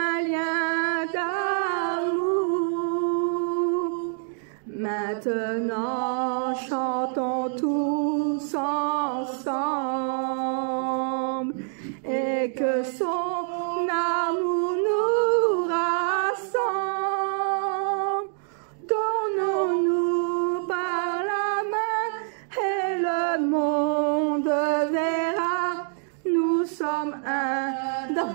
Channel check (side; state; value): left; silent; 60 dB below the other